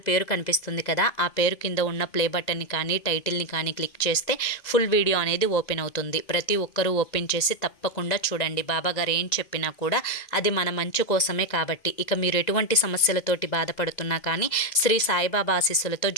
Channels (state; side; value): late; right; 2.0 ms